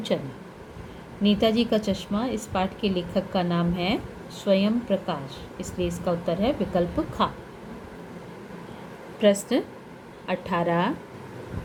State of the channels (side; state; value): both; identical; correlation 1.00